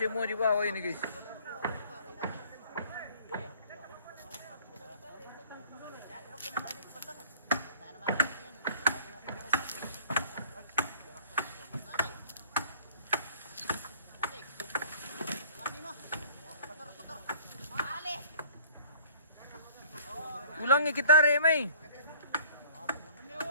di bawah ini guys. Ulangi kita Remai.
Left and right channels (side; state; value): both; inverted; correlation -0.53